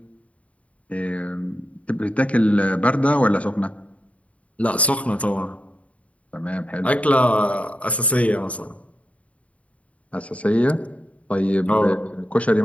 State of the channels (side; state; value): right; late; 0.066 ms